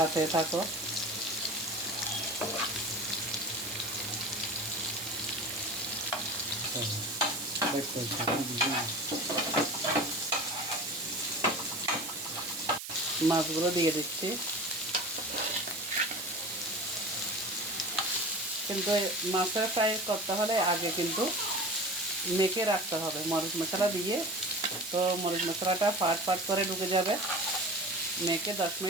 থাকো। মাছগুলো দিয়ে দিচ্ছি, কিন্তু মাছের ফ্রাই করতে হলে আগে কিন্তু মেখে রাখতে হবে মরিচ মশলা দিয়ে। তো মরিচ মশলাটা ফাট ফাট করে ঢুকে যাবে, মেখে 10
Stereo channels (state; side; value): noise; right; hiss, 8 dB below the sound